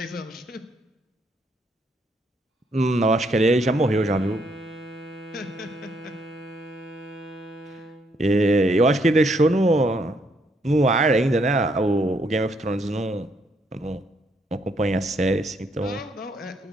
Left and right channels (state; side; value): normal; both; correlation 0.72